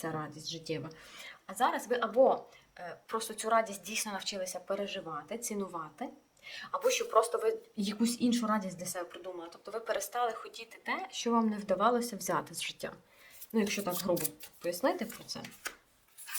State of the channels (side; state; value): both; identical; correlation 1.00